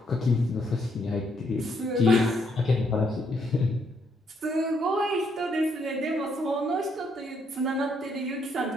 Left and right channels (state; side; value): normal; both; correlation 0.73